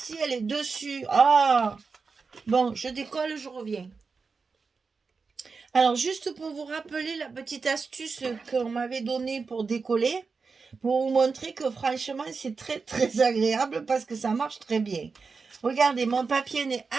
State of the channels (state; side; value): quieter; left; 4.8 dB